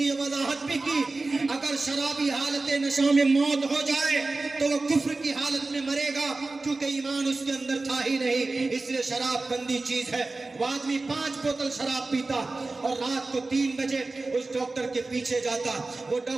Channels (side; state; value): left; quieter; 3.4 dB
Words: وضاحت بھی کی، اگر شرابی حالت نشہ میں موت ہو جائے تو وہ کفر کی حالت میں مرے گا، کیونکہ ایمان اس کے اندر تھا ہی نہیں۔ اس لیے شراب گندی چیز ہے۔ وہ آدمی 5 بوتل شراب پیتا اور رات کو 3 بجے اس ڈاکٹر کے پیچھے جاتا، وہ